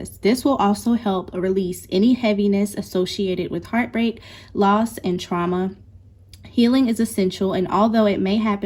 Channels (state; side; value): identical; both; correlation 1.00